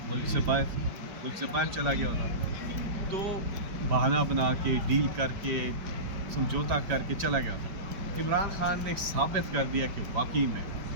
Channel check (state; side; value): late; left; 4.9 ms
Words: ملک سے باہر چلا گیا ہوتا. تو بہانہ بنا کے ڈیل کر کے سمجھوتا کر کے چلا گیا ہوتا. عمران خان نے ثابت کر دیا کہ واقعی میں